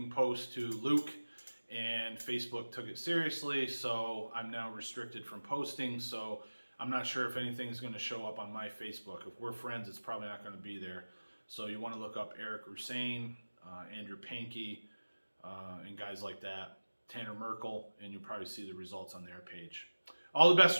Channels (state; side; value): inverted; both; correlation -1.00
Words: post to Luke, and Facebook took it seriously, so I'm now restricted from posting. So I'm not sure if anything's going to show up on my Facebook. If we're friends, it's probably not going to be there. So you want to look up Eric Rusain, Andrew Pankey, and guys like that, Tanner Merkel, and you'll probably see the results on their page. All the best